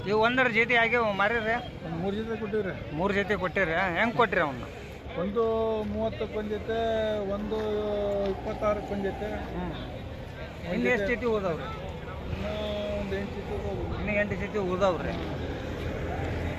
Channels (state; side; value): identical; both; correlation 1.00